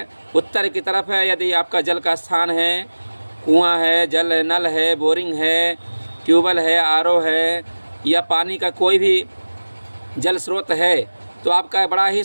उत्तर की तरफ है यदि आपका जल का स्थान है, कुआं है, जल नल है, बोरिंग है, ट्यूबवेल है, आरओ है या पानी का कोई भी जल स्रोत है तो आपका बड़ा ही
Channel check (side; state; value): both; inverted; correlation -1.00